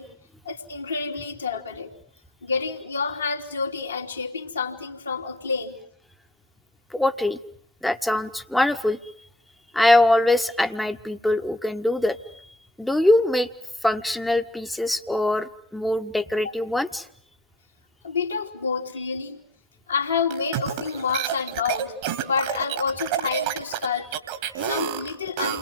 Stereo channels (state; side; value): normal; both; correlation 0.47